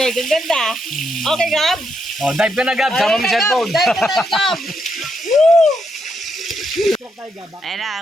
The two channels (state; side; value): normal; both; correlation 0.80